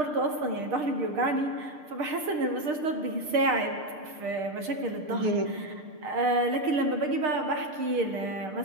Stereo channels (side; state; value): left; late; 6.6 ms